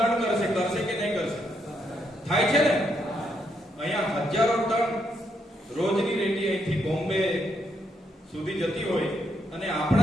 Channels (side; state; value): both; normal; correlation 0.77